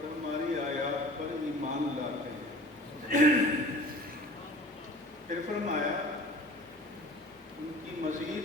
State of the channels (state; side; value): normal; both; correlation 0.43